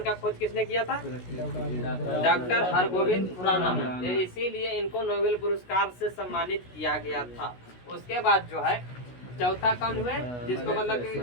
का खोज किसने किया था? डॉक्टर हरगोविंद खुराना। इसीलिए इनको नोबेल पुरस्कार से सम्मानित किया गया था। उसके बाद जो है चौथा कौन हुए जिसको मतलब कि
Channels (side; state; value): right; late; 16 ms